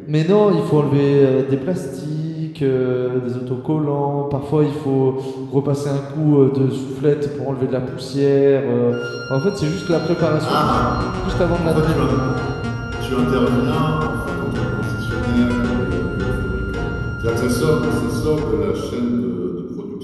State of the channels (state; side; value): identical; both; correlation 1.00